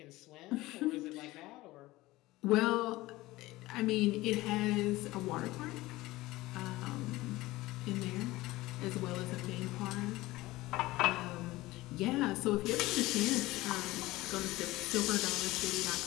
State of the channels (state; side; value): quieter; right; 18.7 dB